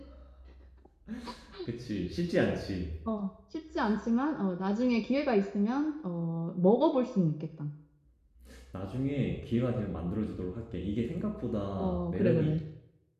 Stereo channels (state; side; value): identical; both; correlation 1.00